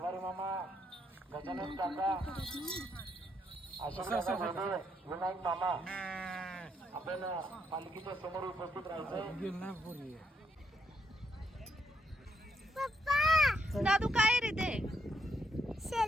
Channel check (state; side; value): normal; both; correlation 0.75